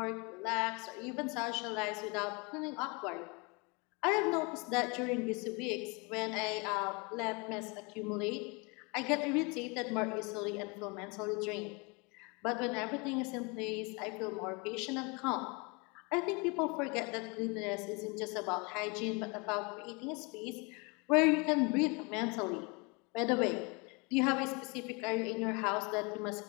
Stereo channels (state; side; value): quieter; right; 29.7 dB